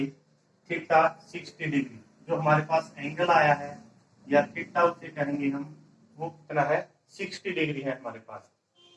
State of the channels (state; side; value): identical; both; correlation 1.00